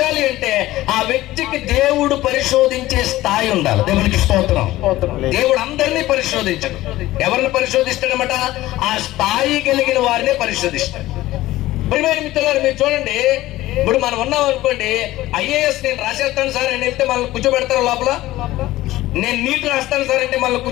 అంటే ఆ వ్యక్తికి దేవుడు పరిశోధించే స్థాయి ఉండాలి. దేవునికి స్తోత్రం. దేవుడు అందరినీ పరిశోధించడు. ఎవరిని పరిశోధిస్తాడనమాట, ఆ స్థాయి కలిగిన వారినే పరిశోధిస్తాడు. ప్రియమైన మిత్రులారా, మీరు చూడండి, ఇప్పుడు మనం ఉన్నాం అనుకోండి, ఐఏఎస్ నేను రాసేస్తాను సార్ అని వెళ్తే మనల్ని కూర్చోబెడతారు లోపల. నేను నీట్ రాస్తాను సార్ అంటే మనల్ని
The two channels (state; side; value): quieter; right; 16.5 dB